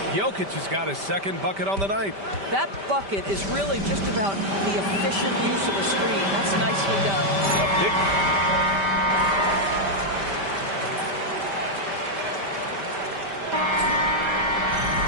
Jokic has got his 2nd bucket on the night. That bucket is really just about the efficient use of a screen. That's nicely done. A big...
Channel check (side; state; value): left; late; 5.1 ms